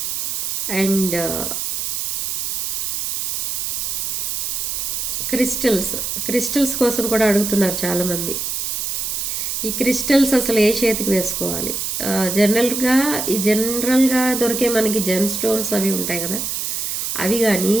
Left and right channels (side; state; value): right; noise; hiss, 2 dB below the sound